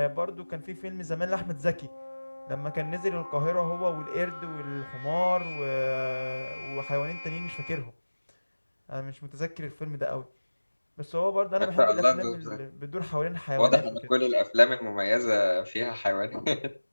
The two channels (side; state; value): both; inverted; correlation -1.00